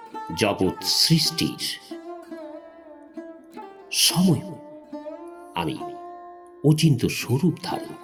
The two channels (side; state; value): both; identical; correlation 1.00